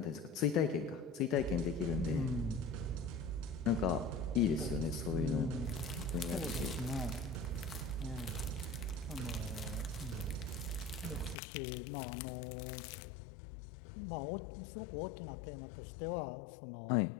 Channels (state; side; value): drops out; right; at 11.4 s